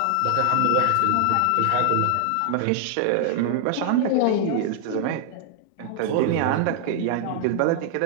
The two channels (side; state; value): both; different; correlation 0.00